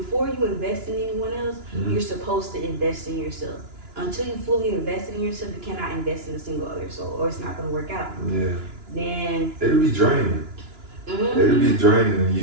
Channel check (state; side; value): late; left; 2.9 ms